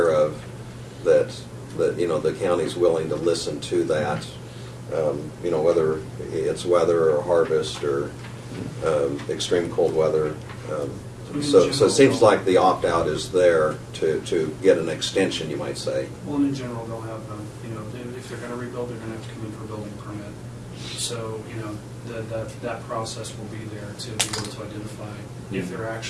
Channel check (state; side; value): identical; both; correlation 1.00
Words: of, that the county's willing to listen to that, whether it's weather or harvest or extreme cold weather. So it seems like the opt-out is there to get an extension, you might say. well, in general, they'll have, if they're going to rebuild, they're going to have to come in for a building permit. So, that process will be there to be able to identify if they're